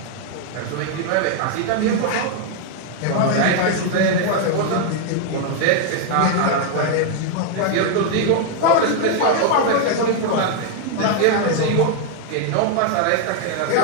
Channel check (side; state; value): both; different; correlation 0.00